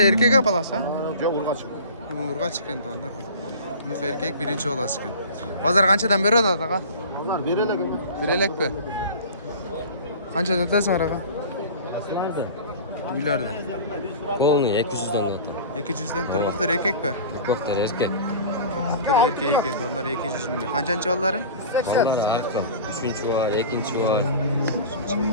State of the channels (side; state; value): both; inverted; correlation -0.38